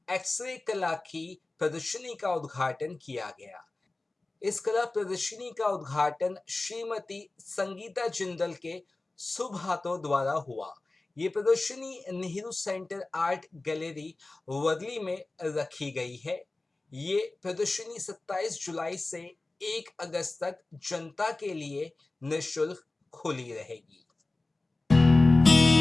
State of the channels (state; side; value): quieter; right; 3.1 dB